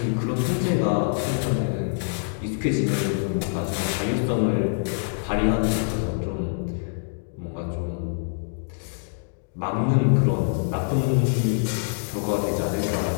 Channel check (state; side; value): silent; right; digital silence